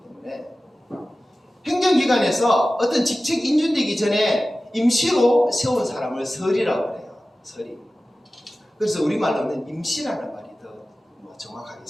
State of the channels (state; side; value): normal; both; correlation 0.96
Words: 때문에. 행정기관에서 어떤 직책 인준되기 전에 임시로 세운 사람을 설이라고 해요. 설이. 그래서 우리말로는 임시라는 말이 더